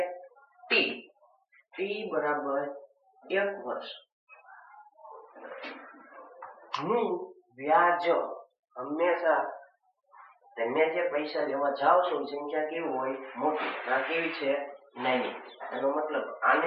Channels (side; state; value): both; identical; correlation 1.00